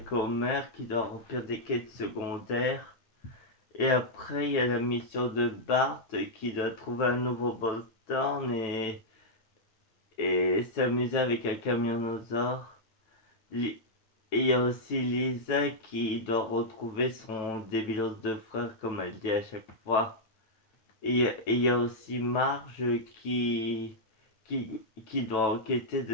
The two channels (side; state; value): right; late; 9.1 ms